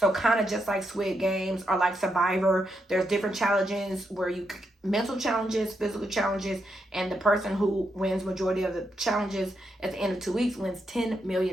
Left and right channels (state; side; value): normal; both; correlation 0.82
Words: kind of just like Squid Games or like Survivor. There's different challenges where you mental challenges, physical challenges, and the person who wins majority of the challenges at the end of 2 weeks wins $10